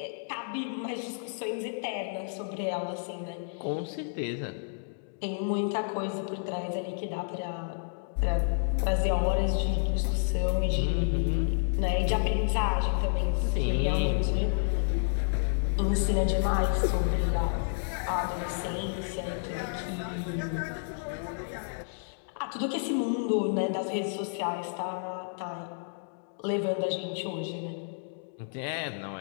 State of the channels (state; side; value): silent; right; digital silence